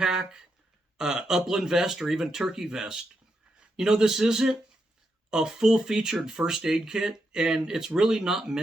upland vest, or even turkey vest. This isn't a full featured first aid kit, and it's really not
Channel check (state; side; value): normal; both; correlation 0.83